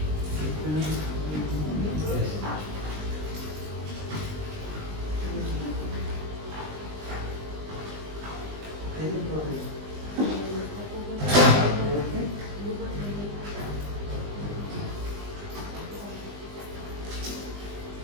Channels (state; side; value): late; left; 20 ms